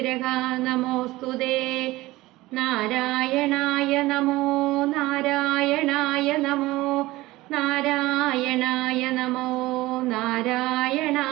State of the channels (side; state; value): left; quieter; 18.8 dB